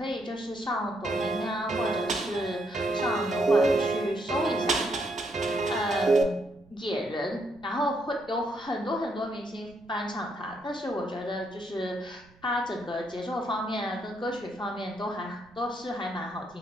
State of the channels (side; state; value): right; noise; rumble, 27 dB below the sound